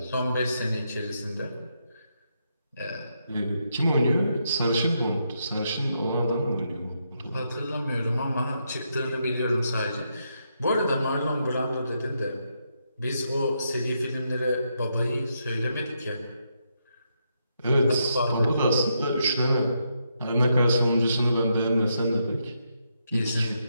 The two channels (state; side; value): inverted; both; correlation -0.80